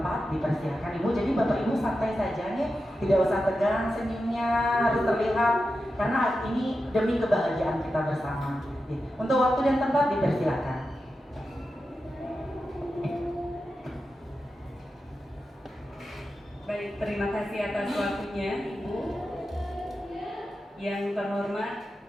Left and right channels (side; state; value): both; normal; correlation 0.90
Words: dipersilakan Ibu. Jadi Bapak Ibu santai saja nih, tidak usah tegang, senyumnya harus terlihat karena ini demi kebahagiaan kita bersama. Untuk waktu dan tempat dipersilakan. Baik, terima kasih atas waktunya Ibu. Yang terhormat